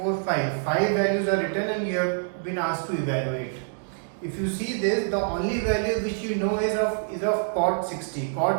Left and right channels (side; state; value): left; silent; digital silence